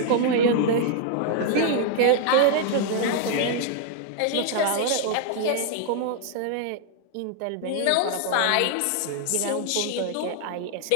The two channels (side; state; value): both; different; correlation 0.00